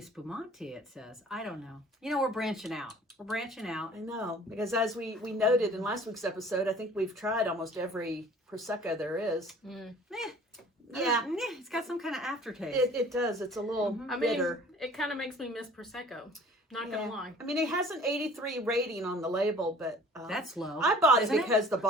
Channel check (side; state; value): both; normal; correlation 0.49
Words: it says. I don't know. You know, we're branching out. I know, because as we noted in last week's episode, I think we've tried almost every Prosecco there is. Yeah, it's got some kind of aftertaste. It does. It's a little bitter. It kind of makes me miss Prosecco. Not gonna lie. I mean, it has an 83 rating on the label, but that's low. I bought it because the